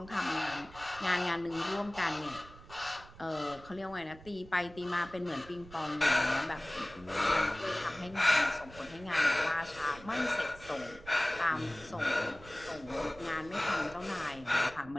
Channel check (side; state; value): right; noise; rumble, 19 dB below the sound